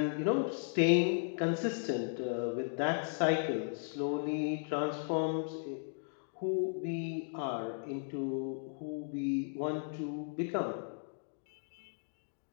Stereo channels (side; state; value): right; silent; digital silence